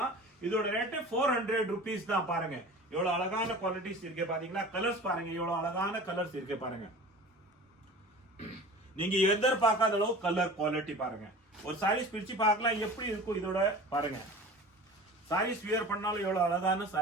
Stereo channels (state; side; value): normal; both; correlation 0.39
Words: இதோட ரேட்டு 400 rupees தான். பாருங்க எவ்வளவு அழகான குவாலிட்டிஸ் இருக்கு பாத்தீங்களா? கலர்ஸ் பாருங்க எவ்வளவு அழகான கலர்ஸ் இருக்கு பாருங்க. நீங்க எதிர்பார்க்காத அளவு கலர் குவாலிட்டி பாருங்க. ஒரு சாரீஸ் பிரிச்சு பார்க்கலாம் எப்படி இருக்கும். இதோட பாருங்க சாரீஸ் வியர் பண்ணாலும் எவ்வளவு அழகான